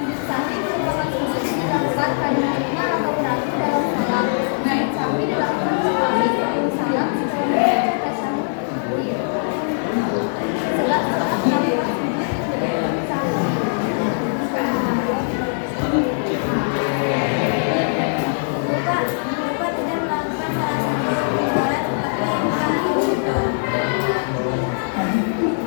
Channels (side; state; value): right; silent; digital silence